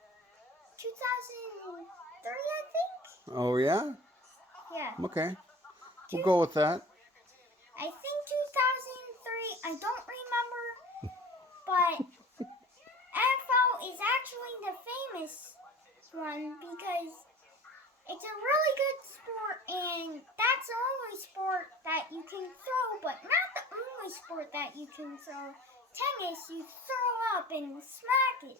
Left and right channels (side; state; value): both; normal; correlation 0.42